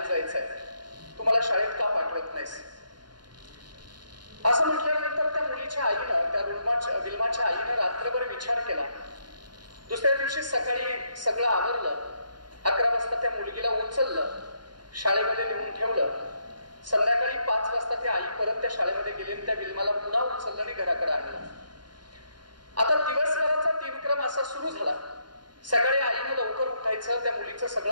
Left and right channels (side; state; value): left; late; 0.71 ms